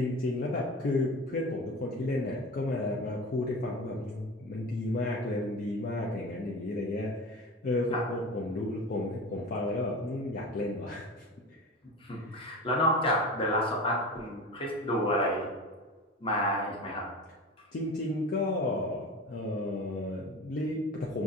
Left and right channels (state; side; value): normal; both; correlation 0.31